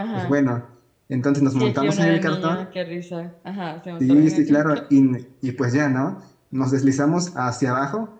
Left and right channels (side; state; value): both; identical; correlation 1.00